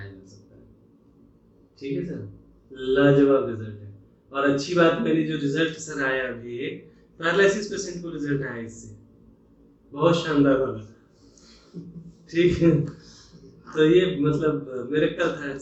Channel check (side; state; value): both; identical; correlation 1.00